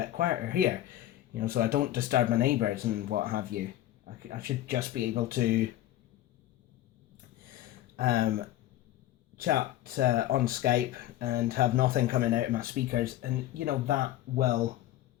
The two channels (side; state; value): right; quieter; 13.8 dB